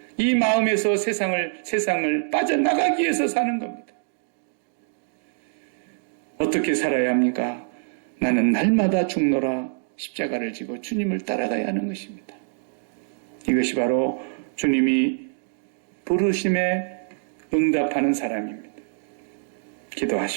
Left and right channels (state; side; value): silent; left; digital silence